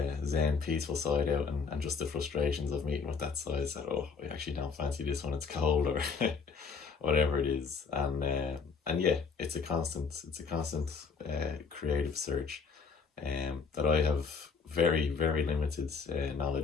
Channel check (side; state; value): right; quieter; 5.3 dB